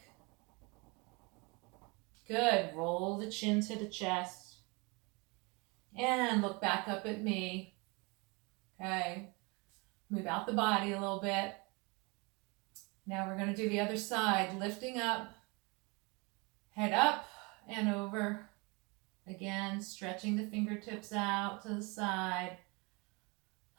Good. Roll the chin to the chest. And look back up at me. Okay. Move out the body a little bit. Now we're going to do the other side. Lifting up. Head up and over. Again, stretching the fingertips out to the side.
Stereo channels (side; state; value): left; quieter; 28.6 dB